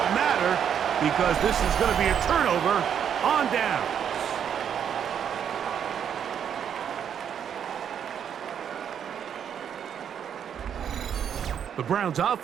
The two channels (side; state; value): left; quieter; 8.5 dB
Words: matter because this is going to be a turnover on down. The Browns